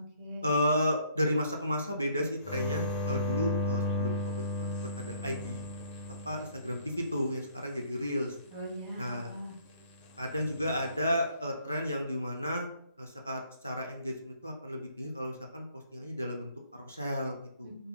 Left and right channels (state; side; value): inverted; both; correlation -0.61